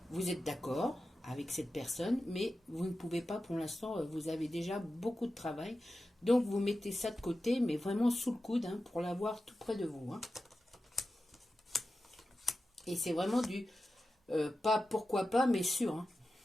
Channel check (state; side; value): normal; both; correlation 0.93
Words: vous êtes d'accord avec cette personne, mais vous ne pouvez pas pour l'instant, vous avez déjà beaucoup de travail, donc vous mettez ça de côté, mais vraiment sous le coude, pour l'avoir tout près de vous. Et c'est vraiment du, pas pourquoi pas, mais sûr.